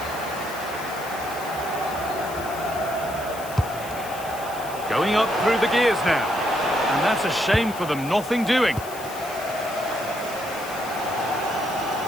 Going up through the gears now. And that's a shame for them, nothing doing.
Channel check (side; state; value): left; noise; hiss, 15 dB below the sound